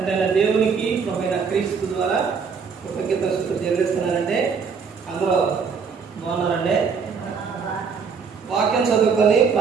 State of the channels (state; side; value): quieter; left; 5.8 dB